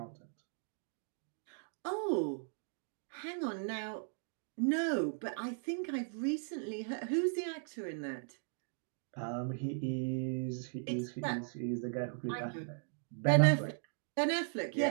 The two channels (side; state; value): left; silent; digital silence